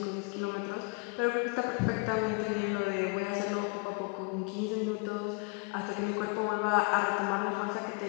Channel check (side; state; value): right; quieter; 30.9 dB